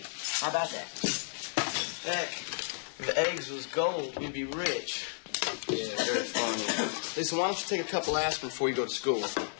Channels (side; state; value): right; silent; digital silence